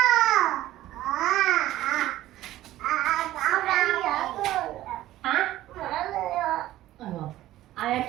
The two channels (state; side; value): quieter; left; 14.8 dB